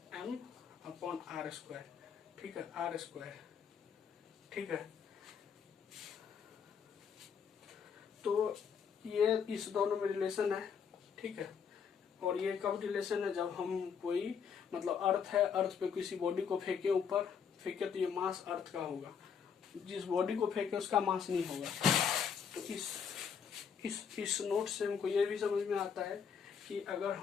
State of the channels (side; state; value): right; quieter; 6.9 dB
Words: M upon R square. ठीक है, आर स्क्वायर। ठीक है, तो ये इस दोनों में रिलेशन है। ठीक है, और ये कब रिलेशन है? जब हम कोई मतलब अर्थ है, अर्थ पे किसी बॉडी को फेंके, ऊपर फेंके तो ये मास अर्थ का होगा, जिस बॉडी को फेंके उसका मास नहीं होगा। तो इस नोट से हमको ये भी समझ में आता है कि अगर